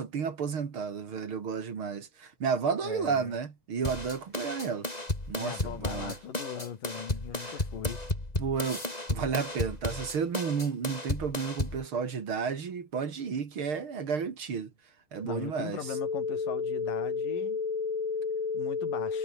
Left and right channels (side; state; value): right; late; 1.9 ms